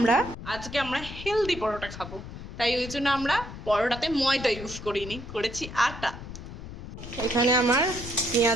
আমরা হেলদি পরোটা খাবো, তাই ওই জন্য আমরা পরোটাতে ময়দা ইউজ করিনি, করেছি আটা। এখানে আমার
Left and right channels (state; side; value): noise; left; rumble, 11 dB below the sound